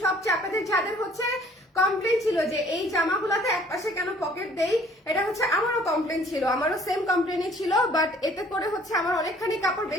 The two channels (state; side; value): normal; both; correlation 0.57